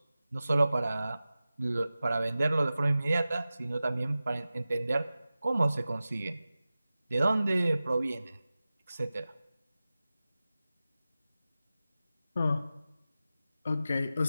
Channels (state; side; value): inverted; both; correlation -0.95